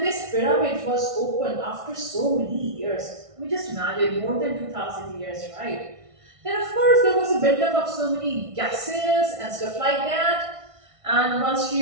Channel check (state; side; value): late; left; 1.5 ms